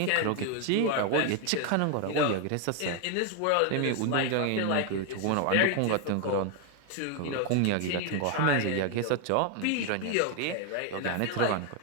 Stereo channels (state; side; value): different; both; correlation 0.01